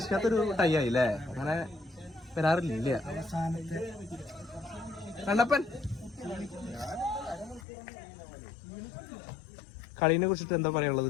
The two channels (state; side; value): drops out; right; at 7.7 s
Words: ടൈ ആയില്ലേ. അങ്ങനെ വരാറില്ല. കണ്ടപ്പൻ കളീനെ കുറിച്ചിട്ട് എന്താ